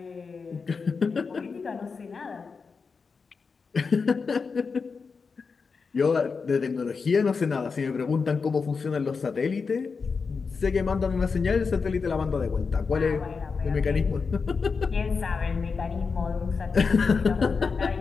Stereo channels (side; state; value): right; quieter; 5.1 dB